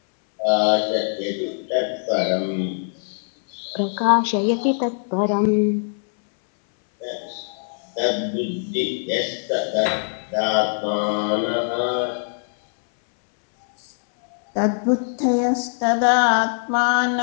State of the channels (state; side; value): silent; right; 64 dB below the other